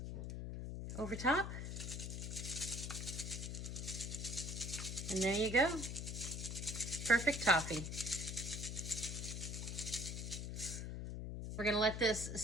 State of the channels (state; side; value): noise; left; hum, 5 dB below the sound